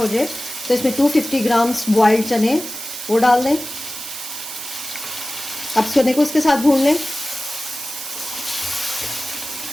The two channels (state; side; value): noise; right; hiss, 9 dB below the sound